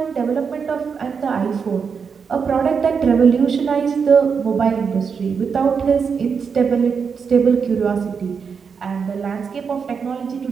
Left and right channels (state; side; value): quieter; left; 6.0 dB